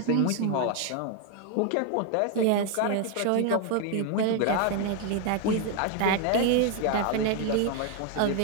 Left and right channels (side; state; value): both; different; correlation 0.01